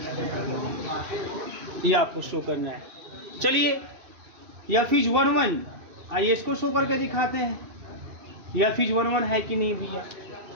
ये आपको शो करना है। चलिए एफ इज 1 1, आइए इसको शो करके दिखाते हैं, एफ इज 1 1 है कि नहीं भैया,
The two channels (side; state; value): left; late; 2.7 ms